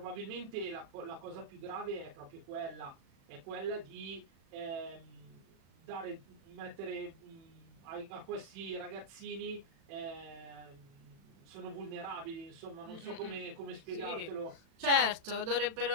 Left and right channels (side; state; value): left; late; 36 ms